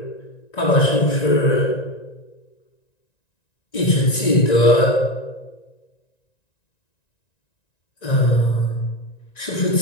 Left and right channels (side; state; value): right; late; 1.9 ms